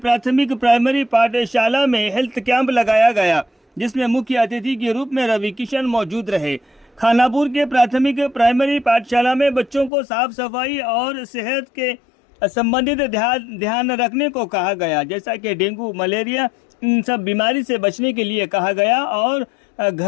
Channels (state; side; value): drops out; right; at 9.9 s